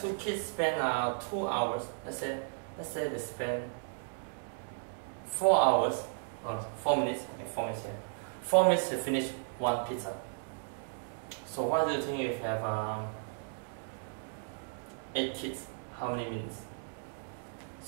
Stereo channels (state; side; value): silent; left; digital silence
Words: 2 kids spend 2 hours. Let's say they spend 4 hours, or 4 minutes. Okay, 4 minutes here. 4 minutes to finish 1 pizza. So what do you think if you have 8 kids? How many minutes?